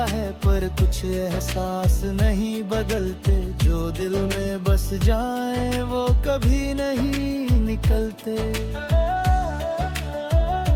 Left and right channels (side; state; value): both; identical; correlation 1.00